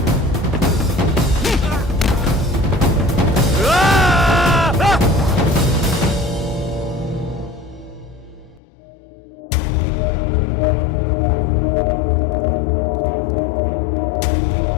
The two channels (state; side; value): drops out; right; at 8.6 s